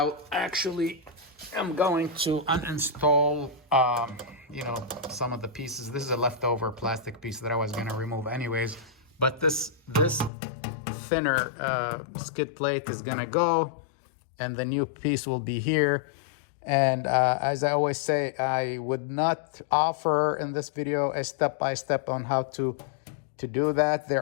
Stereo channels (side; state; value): right; drops out; at 10.3 s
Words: actually, I'm going to uninstall, some of the pieces. This is a leftover plastic piece that I was gonna remove anyways, but this thinner skid plate is gonna go, and the new piece will be here. And as I always say, I would not offer in this video a step-by-step on how to do that. There